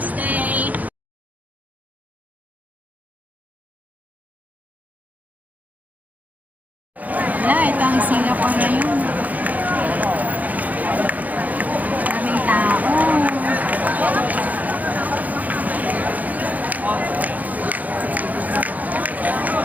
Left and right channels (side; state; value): left; late; 0.078 ms